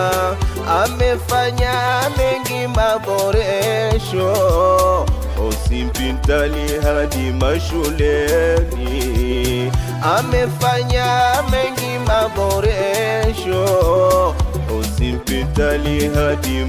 Amefanya mengi maboresho, hospitali hadi mashuleni. Amefanya mengi maboresho, hospitali hadi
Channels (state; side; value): identical; both; correlation 1.00